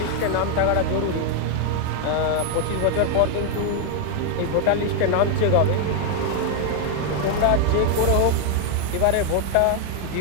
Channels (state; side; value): different; both; correlation 0.00